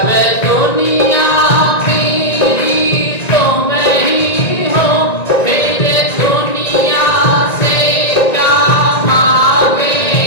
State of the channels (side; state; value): right; late; 1.9 ms